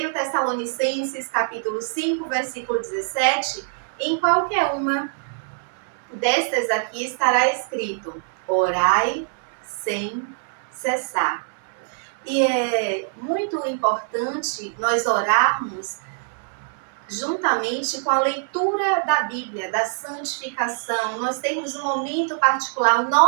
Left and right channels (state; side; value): silent; left; 63 dB below the other